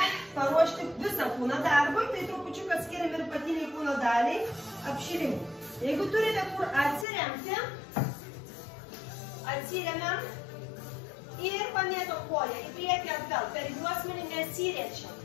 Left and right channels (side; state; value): right; drops out; at 7.1 s